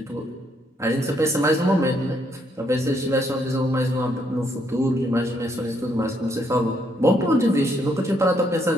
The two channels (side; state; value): both; normal; correlation 0.73